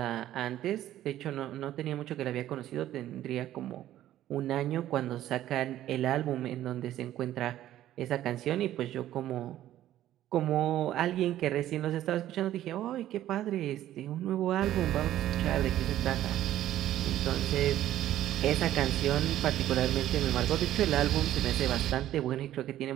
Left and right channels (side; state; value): left; quieter; 12.9 dB